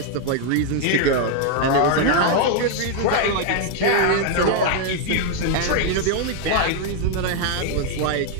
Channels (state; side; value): different; both; correlation 0.00